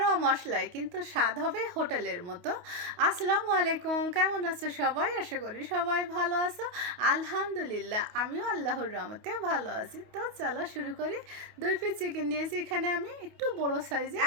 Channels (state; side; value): late; left; 28 ms